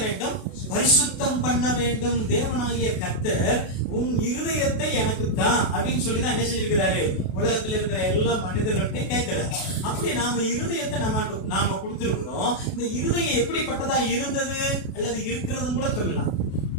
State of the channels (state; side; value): late; right; 32 ms